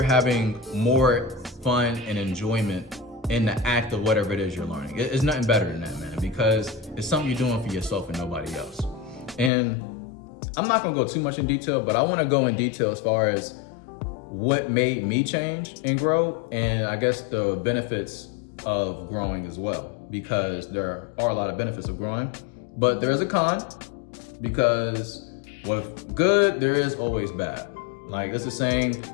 having more fun and enjoyment in the act of whatever it is you're learning. It's nothing better than that, man, because it's something you're doing for yourself and nobody else. And I'm not gonna go too much in detail, but I wanna go in detail as far as what made me change and grow, and I guess the benefits of growing as well, because there are a lot of benefits of growing, but there is a con, because with good, there is always bad. Like it's a saying,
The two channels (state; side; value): drops out; right; at 9.5 s